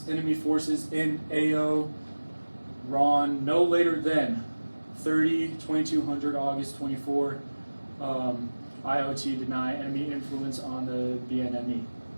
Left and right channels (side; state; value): both; inverted; correlation -1.00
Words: enemy forces in AO RON no later than 30/2200 August 24. IOT deny enemy influence on the BNME.